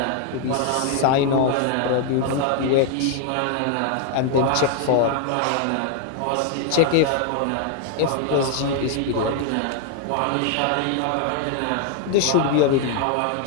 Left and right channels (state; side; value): different; both; correlation 0.00